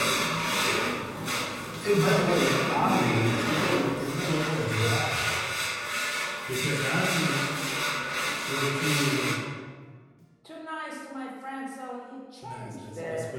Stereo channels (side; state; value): both; identical; correlation 1.00